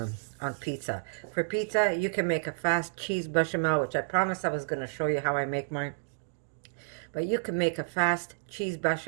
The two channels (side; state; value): left; silent; digital silence